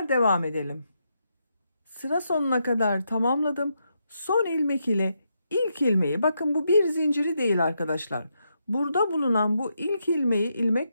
devam edelim. Sıra sonuna kadar tamamladım. Son ilmek ile ilk ilmeği, bakın bu bir zinciri değil arkadaşlar. Burada bulunan bu ilk ilmeği ilmek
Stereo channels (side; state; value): both; inverted; correlation -0.81